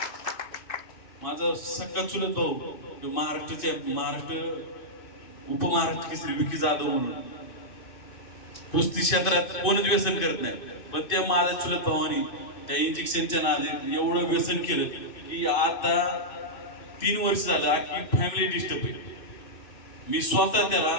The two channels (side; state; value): right; late; 2.5 ms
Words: माझा सख्खा चुलत भाऊ महाराष्ट्र उपमहाराष्ट्र केसरी विकी जाधव म्हणून कुस्ती क्षेत्रात कोणच व्यसन करत नाही, पण त्या माझ्या चुलत भावानी त्या इंजेक्शनच्या नादी एवढं व्यसन केलं की आता 3 वर्ष झालं की फॅमिली डिस्टर्ब आहे. मी स्वतः त्याला